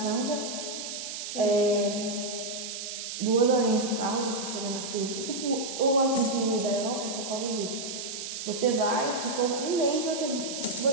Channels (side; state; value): right; noise; hiss, 7 dB below the sound